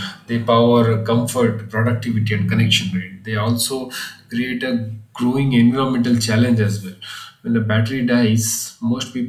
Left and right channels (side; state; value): both; identical; correlation 1.00